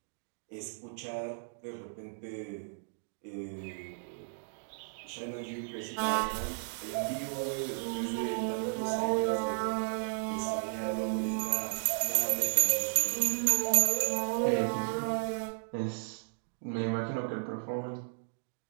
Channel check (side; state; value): left; silent; digital silence